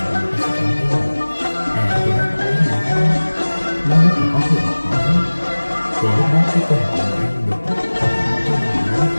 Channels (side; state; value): both; inverted; correlation -1.00